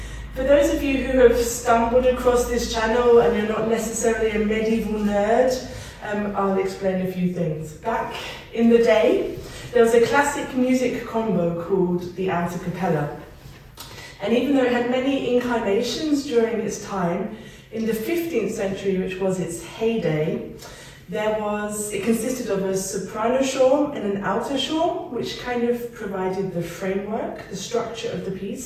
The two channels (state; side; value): identical; both; correlation 1.00